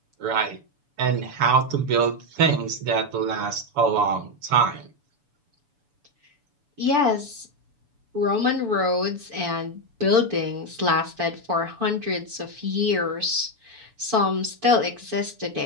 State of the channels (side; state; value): left; late; 7.0 ms